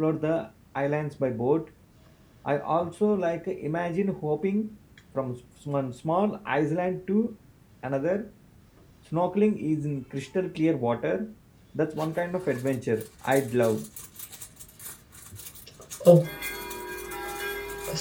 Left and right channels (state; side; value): identical; both; correlation 1.00